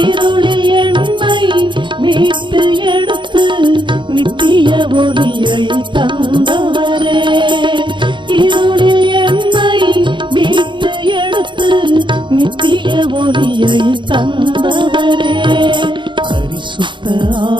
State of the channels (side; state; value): left; late; 0.23 ms